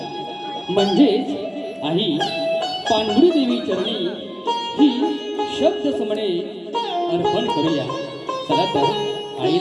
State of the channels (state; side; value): identical; both; correlation 1.00